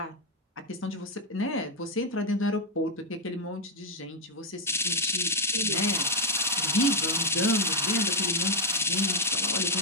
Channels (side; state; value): both; normal; correlation 0.02